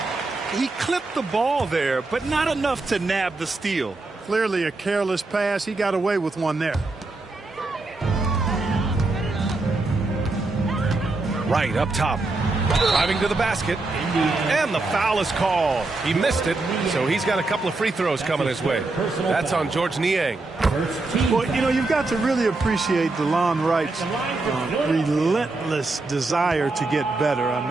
He clipped the ball there, but not enough to nab the steal. Clearly a careless pass. He got away with one there. Right up top. Driving to the basket. And the foul is called. He missed it, so he's got a couple of free throws coming his way. That's on George Niang. Well, you know, you've got to really appreciate DeLon Wright's relentless desire to get better.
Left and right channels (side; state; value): left; quieter; 3.3 dB